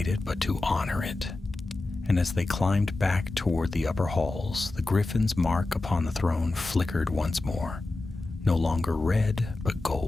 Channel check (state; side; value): quieter; right; 3.1 dB